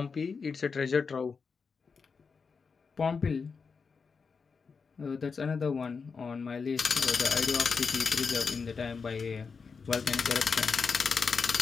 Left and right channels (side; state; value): right; quieter; 5.2 dB